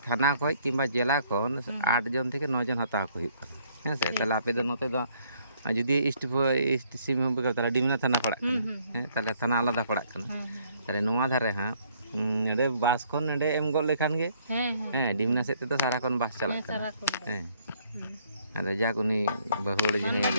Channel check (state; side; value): inverted; both; correlation -0.65